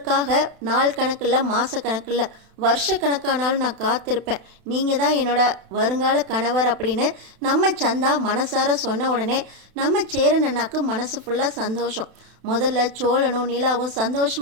நாள் கணக்கில் மாத கணக்கில் வருஷக்கணக்கானாலும் நான் காத்திருப்பேன், நீங்கள் தான் என்னோட வருங்கால கணவர் அப்படின்னு நம்ம சந்தா மனசார சொன்ன உடனே நம்ம சேரன் அண்ணாக்கு மனசு ஃபுல்லாக சந்தோஷம். முதல்ல சோழனும் நிலாவும்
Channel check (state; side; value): late; left; 32 ms